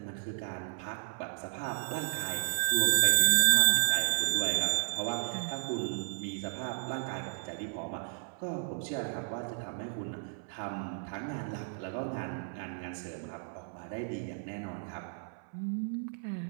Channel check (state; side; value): silent; left; 56 dB below the other